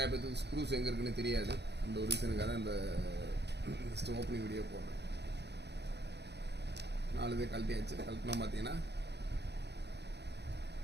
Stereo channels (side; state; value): left; late; 0.49 ms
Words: பேருக்கு ஸ்க்ரூஸ் எங்கே இருக்குன்னு தெரியாது. அந்த ஒரு ரீசனுக்காக தான் இந்த ஜஸ்ட் ஓப்பனிங் வீடியோ போடுறேன். 4 இது கழட்டியாச்சு. கழட்டினா பார்த்தீங்கன்னா